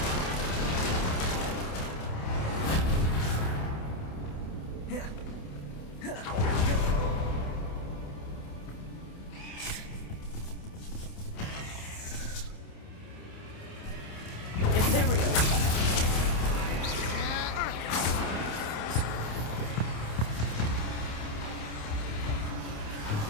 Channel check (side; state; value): right; late; 28 ms